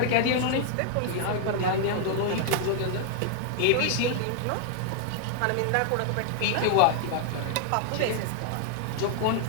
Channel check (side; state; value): both; different; correlation 0.00